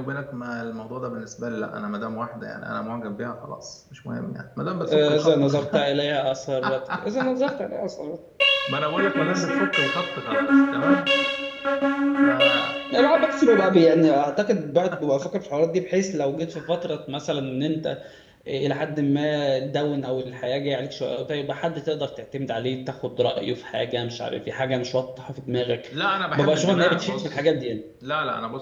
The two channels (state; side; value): identical; both; correlation 1.00